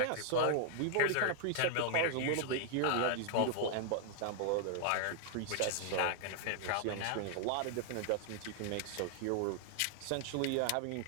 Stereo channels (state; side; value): different; both; correlation 0.00